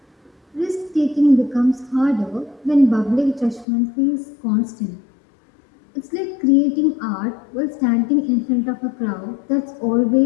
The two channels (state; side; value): drops out; right; at 3.7 s